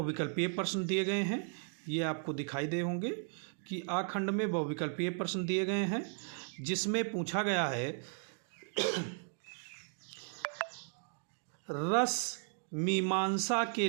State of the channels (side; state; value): left; silent; 54 dB below the other